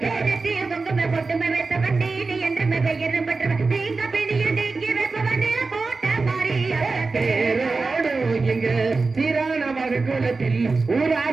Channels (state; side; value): quieter; left; 4.0 dB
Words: குங்குமை பொட்டுமை வைத்தவன் நீலி என்று பெயரும் பெற்றவன். நீங்க பிணிய நீக்கி வைப்பவன் போட்ட மாறிய தேரோடு எங்க சீரான குலத்தில்